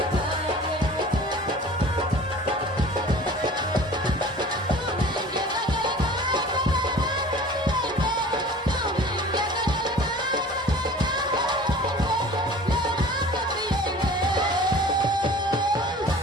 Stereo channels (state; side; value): normal; both; correlation 0.43